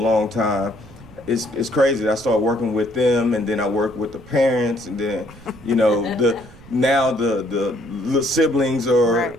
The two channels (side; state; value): right; noise; rumble, 21 dB below the sound